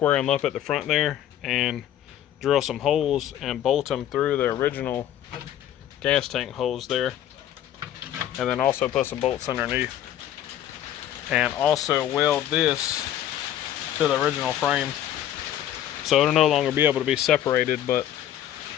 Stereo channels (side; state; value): right; quieter; 11.4 dB